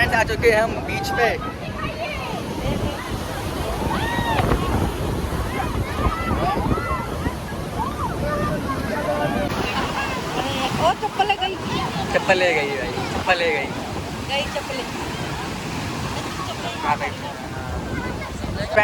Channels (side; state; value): both; identical; correlation 1.00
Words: आ चुके हैं हम बीच पे। और चप्पल ले गई, चप्पल ले गई भाई, चप्पल ले गई। चप्पल हाँ भाई।